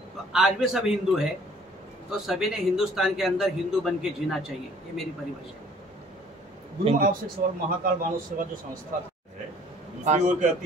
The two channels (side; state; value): both; normal; correlation 0.55